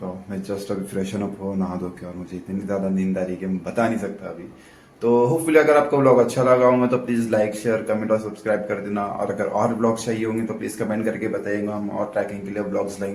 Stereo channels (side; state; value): both; identical; correlation 1.00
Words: हूँ. मैं जस्ट अभी फ्रेशन अप हो, नहा धो के, और मुझे इतनी ज़्यादा नींद आ रही है कि मैं बता नहीं सकता अभी. तो होपफुली अगर आपको व्लॉग अच्छा लगा होगा तो प्लीज़ लाइक, शेयर, कमेंट और सब्सक्राइब कर देना. और अगर और ब्लॉग्स चाहिए होंगे तो प्लीज़ कमेंट करके बताइएगा. हम और ट्रैकिंग के लिए ब्लॉग्स